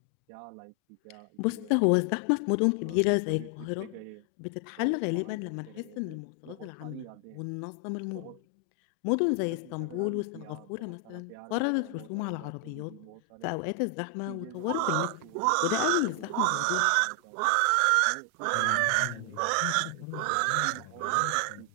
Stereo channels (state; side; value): different; both; correlation 0.00